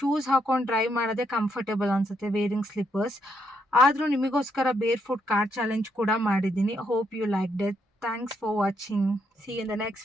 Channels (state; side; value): normal; both; correlation 0.76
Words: ಹಾಕೊಂಡು ಡ್ರೈವ್ ಮಾಡೋದೇ ಕಂಫರ್ಟೇಬಲ್ ಅನಿಸುತ್ತೆ, ವೇರಿಂಗ್ ಸ್ಲಿಪ್ಪರ್ಸ್. ಆದರೂ ನಿಮಗೋಸ್ಕರ ಬೇರ್ ಫುಟ್ ಕಾರ್ ಚಾಲೆಂಜ್ ಕೂಡ ಮಾಡಿದ್ದೀನಿ. Hope you like that. Thanks for watching. See in the